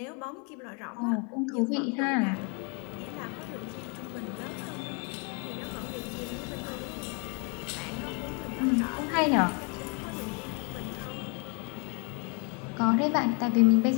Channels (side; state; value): right; quieter; 35.1 dB